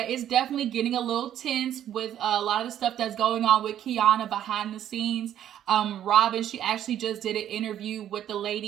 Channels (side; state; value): left; quieter; 10.9 dB